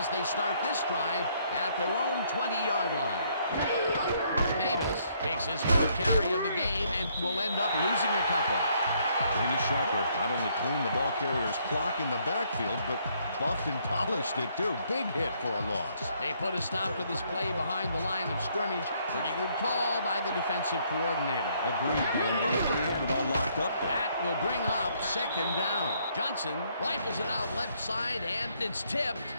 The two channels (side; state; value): both; inverted; correlation -0.69